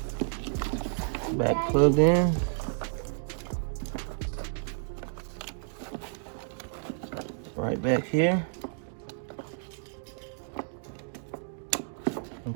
back plugged in. Right back here.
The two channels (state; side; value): silent; left; 57 dB below the other